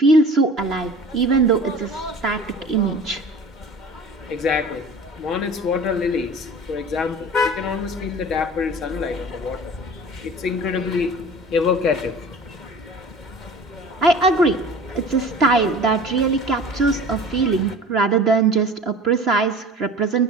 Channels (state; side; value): normal; both; correlation 0.41